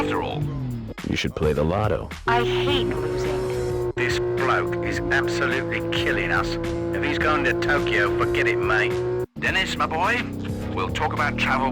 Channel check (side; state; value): both; identical; correlation 1.00